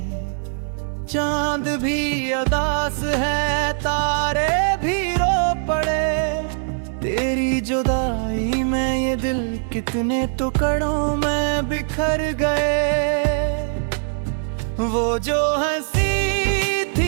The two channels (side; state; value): left; silent; 65 dB below the other